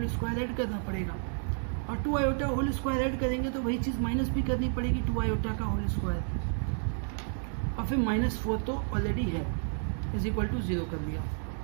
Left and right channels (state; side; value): silent; left; 57 dB below the other